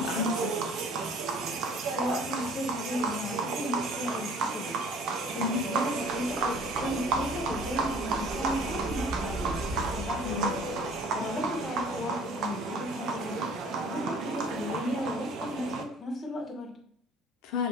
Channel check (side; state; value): both; normal; correlation 0.52